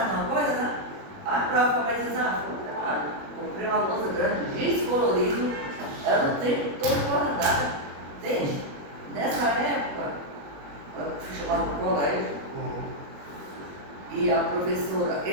numa coisa, né? A prova vai dizer, comprei uma louça grande, descolorido, ela o tempo todo guardada. Entende? Nessa época, eu fui chamada para o colégio, e a professora,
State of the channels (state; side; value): late; left; 21 ms